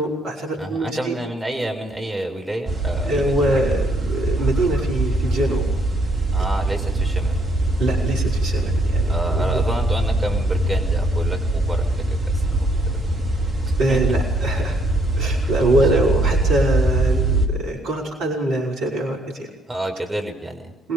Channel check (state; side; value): normal; both; correlation 0.69